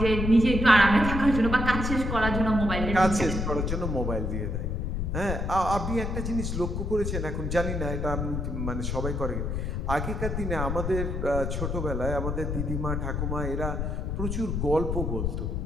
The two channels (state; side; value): noise; left; rumble, 2 dB below the sound